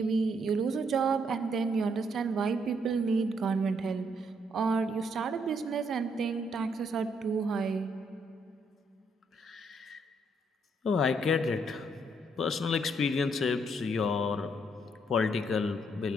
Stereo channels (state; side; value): normal; both; correlation 0.72